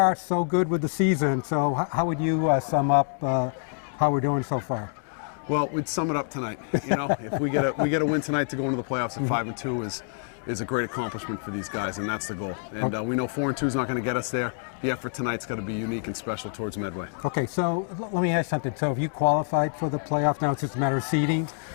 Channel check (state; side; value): silent; right; 60 dB below the other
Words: so good with the season. So how would you sum up how we're doing so far? Well, we'd sum it up tonight. You know, if we get a win tonight to go into the playoffs at 5-2 is a great accomplishment for these guys, and that's the goal. And we know 4-2 is not going to get us there. The effort tonight's got to be unique and special towards Medway. Okay, so let me ask something. So have you qualified for the playoff now? It's just a matter of seeding?